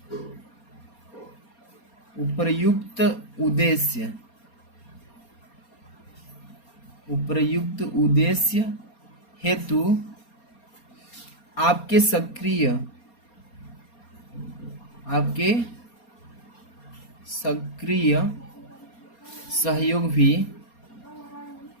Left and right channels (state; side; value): late; right; 4.3 ms